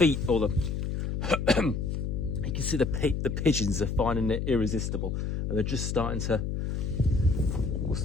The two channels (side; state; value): left; noise; hum, 2 dB below the sound